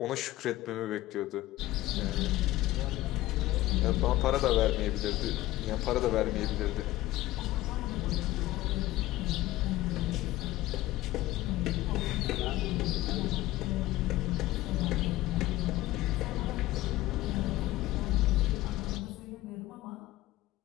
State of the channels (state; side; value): quieter; right; 16.6 dB